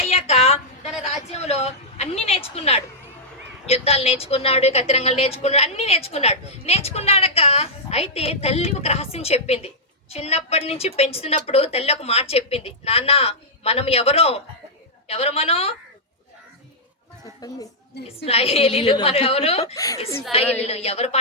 తన రాజ్యంలో అన్ని నేర్చుకున్నాడు. యుద్ధాలు నేర్చుకున్నాడు, కత్తిరంగాలు నేర్చుకున్నాడు, అన్ని నేర్చుకున్నాడక అయితే తల్లి ఒక రహస్యం చెప్పింది. చిన్నప్పటి నుంచి పెంచుతున్నప్పుడు తల్లి ఒక మాట చెప్పింది, నాన్న మనం ఎవరు ఇశ్రాయేలీలు. మనం ఇశ్రాయేలీలు. ఎవరు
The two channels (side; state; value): both; normal; correlation -0.09